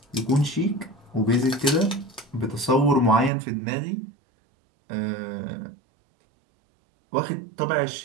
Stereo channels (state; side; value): drops out; left; at 3.3 s